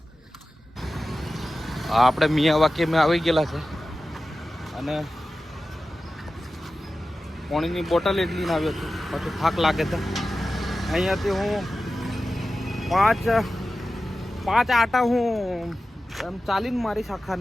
આપણે મિયા વાક્યમાં આવી ગયેલા છે અને પાણીની બોટલ એટલી ના આવ્યો છું, પછી થાક લાગે છે. અહીંયાથી હું પાંચ આટા હું એમ ચાલીને મારીશ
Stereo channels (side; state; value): both; normal; correlation 0.94